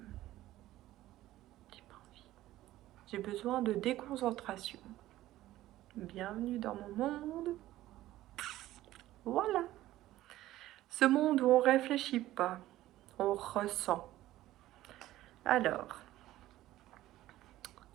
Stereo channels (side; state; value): left; quieter; 15.1 dB